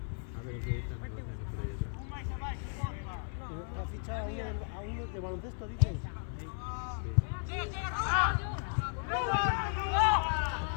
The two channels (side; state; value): right; silent; 54 dB below the other